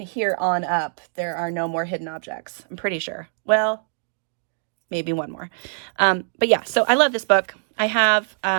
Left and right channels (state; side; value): silent; left; 63 dB below the other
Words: here on up, there are no more hidden objects. I'm pretty sure. Well, maybe one more. But yeah, so I love this book. I have